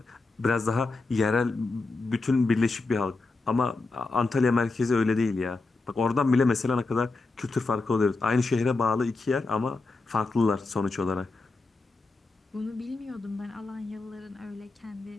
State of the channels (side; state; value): right; quieter; 3.6 dB